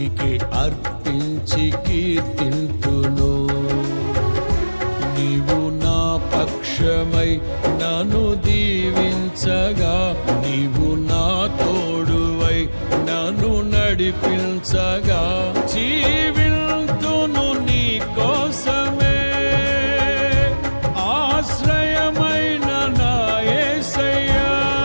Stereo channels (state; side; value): inverted; both; correlation -1.00